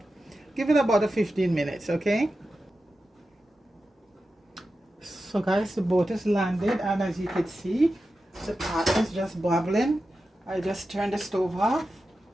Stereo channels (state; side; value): normal; both; correlation 0.92